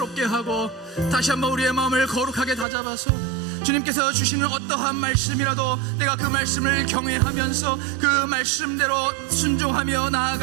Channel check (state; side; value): drops out; left; at 2.7 s